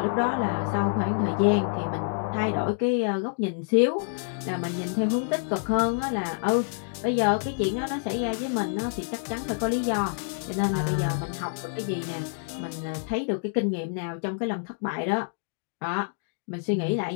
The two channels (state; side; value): silent; right; digital silence